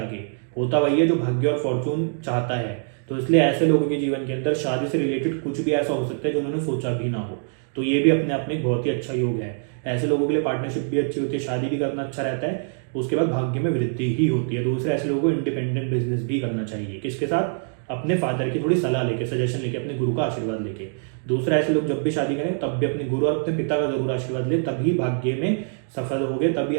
होता वही है जो भाग्य और फॉर्चून चाहता है। तो इसलिए ऐसे लोगों के जीवन के अंदर शादी से रिलेटेड कुछ भी ऐसा हो सकता है जो उन्होंने सोचा भी ना हो, तो ये भी अपने आप में बहुत ही अच्छा योग है। ऐसे लोगों के लिए पार्टनरशिप भी अच्छी होती है, शादी भी करना अच्छा रहता है, उसके बाद भाग्य में वृद्धि ही होती है। दूसरे ऐसे लोगों को इंडिपेंडेंट बिजनेस भी करना चाहिए, किसके साथ, अपने फादर की थोड़ी सलाह लेके, सजेशन लेके, अपने गुरु का आशीर्वाद लेके। दूसरा, ऐसे लोग जब भी शादी करें तब भी अपने गुरु और अपने पिता का जरूर आशीर्वाद ले, तभी भाग्य में सफल होगे, तभी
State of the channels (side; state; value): left; silent; 63 dB below the other